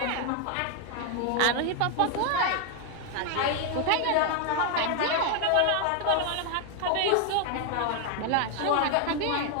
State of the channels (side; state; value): both; different; correlation 0.01